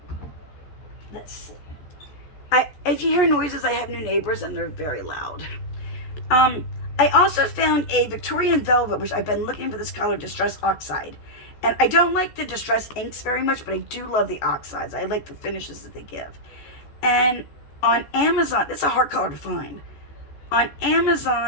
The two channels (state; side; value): late; right; 14 ms